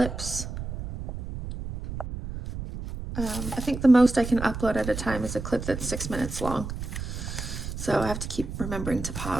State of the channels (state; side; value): noise; right; rumble, 7 dB below the sound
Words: I think the most I can upload at a time is a clip that's 6 minutes long. So I have to keep remembering to